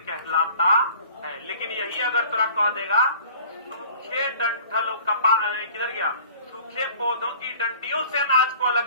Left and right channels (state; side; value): inverted; both; correlation -0.48